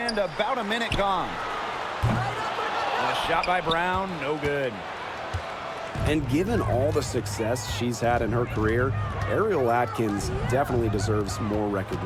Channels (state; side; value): identical; both; correlation 1.00